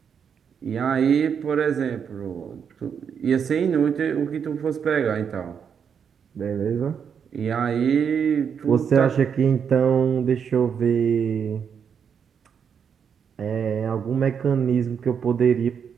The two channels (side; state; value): left; quieter; 7.2 dB